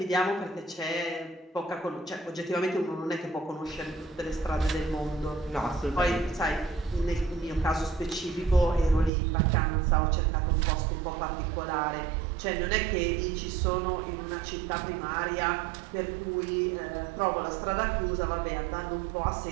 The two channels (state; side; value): drops out; left; at 9.1 s